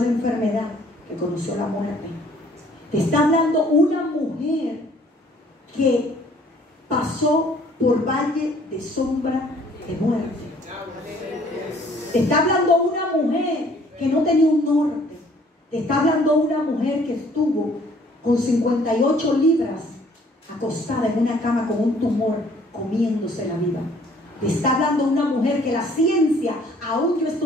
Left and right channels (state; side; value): normal; both; correlation 0.58